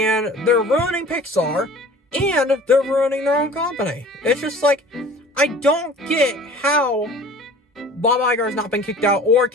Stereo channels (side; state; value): both; normal; correlation 0.45